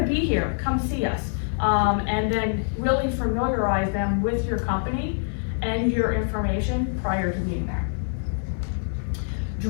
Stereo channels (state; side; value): silent; right; digital silence